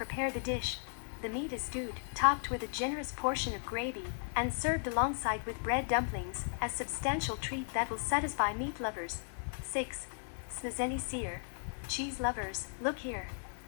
the dish. The meat is stewed, topped with a generous portion of gravy, and served alongside with bread dumplings, a substantial treat that will satisfy meat lovers. 6. Smazeny syr. Cheese lovers, look here.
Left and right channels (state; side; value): silent; right; 54 dB below the other